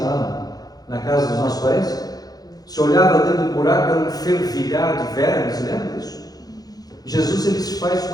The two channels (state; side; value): late; right; 0.19 ms